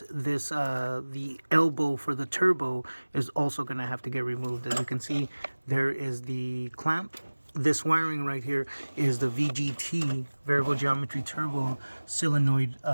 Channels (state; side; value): inverted; both; correlation -1.00